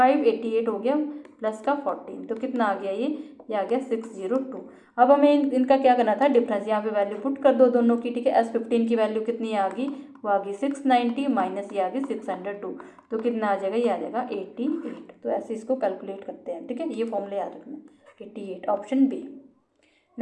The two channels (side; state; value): both; identical; correlation 1.00